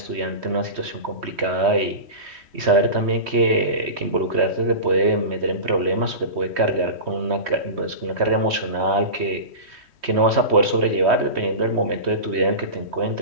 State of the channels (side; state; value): left; late; 3.1 ms